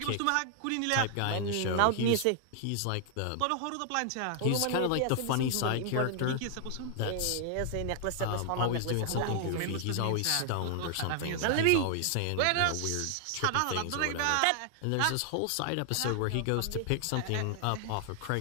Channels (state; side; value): different; both; correlation 0.00